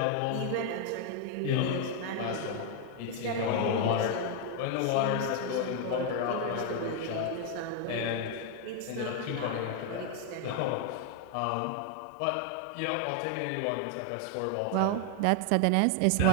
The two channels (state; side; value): different; both; correlation 0.00